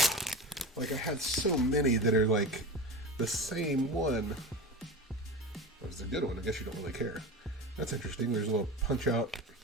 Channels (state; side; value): normal; both; correlation 0.27